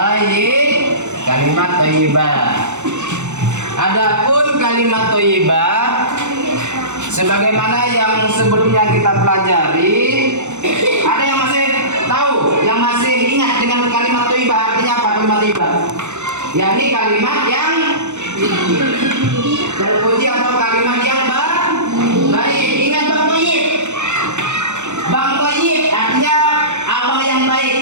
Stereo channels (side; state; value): left; late; 0.84 ms